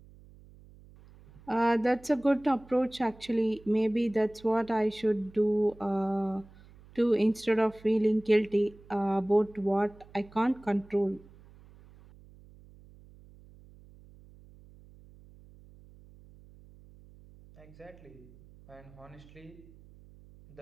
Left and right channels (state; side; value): noise; right; hum, 23 dB below the sound